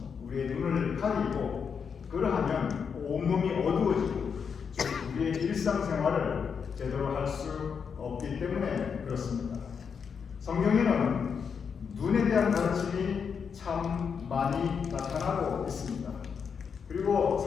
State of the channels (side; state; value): right; quieter; 6.4 dB